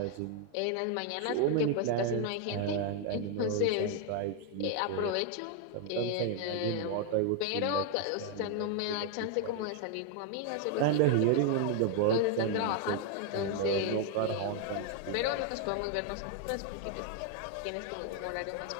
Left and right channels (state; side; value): different; both; correlation 0.00